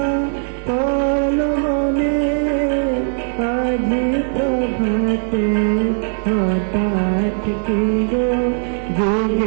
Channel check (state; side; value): silent; left; 64 dB below the other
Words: পড়ল মনে আজি প্রভাতে হঠাৎ কি গো